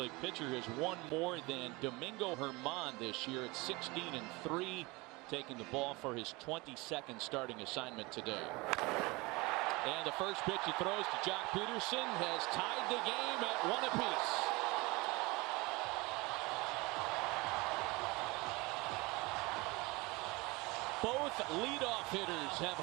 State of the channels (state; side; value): quieter; left; 24.1 dB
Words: pitcher has won more than Domingo Herman this year at 16-3. Taking the ball for his 22nd starting assignment today. And the first pitch he throws to Jock Peterson has tied the game at 1 apiece. Both leadoff hitters have